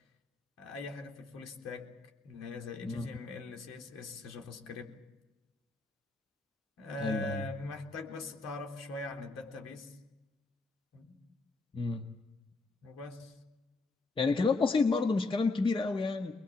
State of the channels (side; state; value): right; quieter; 3.6 dB